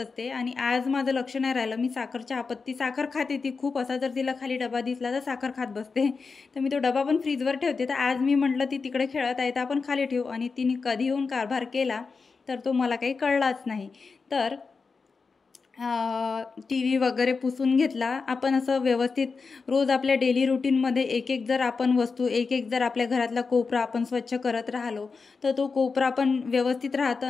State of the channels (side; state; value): right; quieter; 4.7 dB